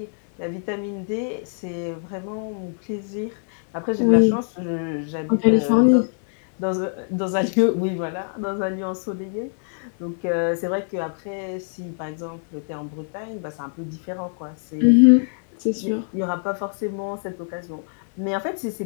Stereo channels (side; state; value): right; silent; 63 dB below the other